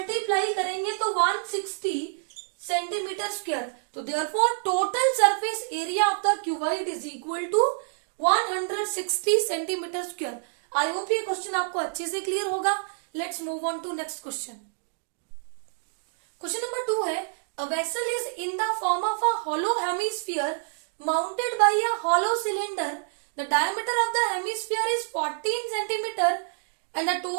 करेंगे तो 160 सेंटीमीटर स्क्वायर। तो therefore total surface area of the cuboid is equal to 160 centimetre square. I hope ये क्वेश्चन आपको अच्छे से क्लियर होगा। Let's move on to next question. Question number 2 है a vessel is in the form of a hollow hemisphere mounted by a hollow cylinder. The diameter of the hemisphere is 14 centimeter and the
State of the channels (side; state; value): left; silent; digital silence